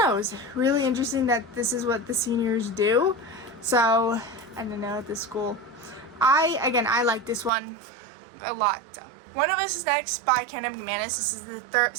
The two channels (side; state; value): left; drops out; at 7.5 s